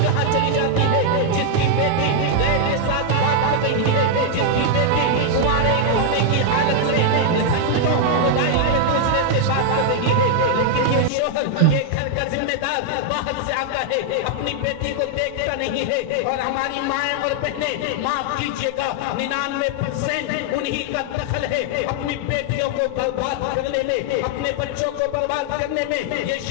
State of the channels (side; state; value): both; different; correlation 0.00